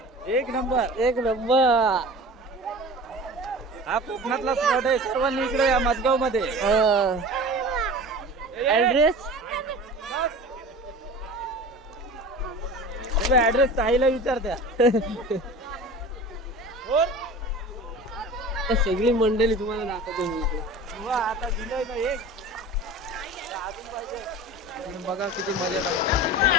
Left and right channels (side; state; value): both; normal; correlation 0.37